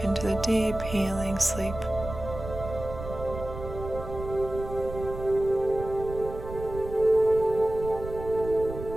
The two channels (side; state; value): right; noise; rumble, 10 dB below the sound